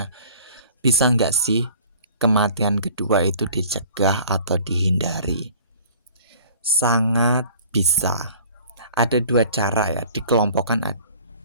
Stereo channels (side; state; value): both; inverted; correlation -0.49